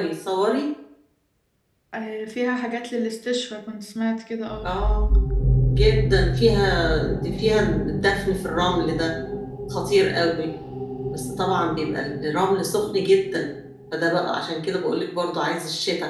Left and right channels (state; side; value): identical; both; correlation 1.00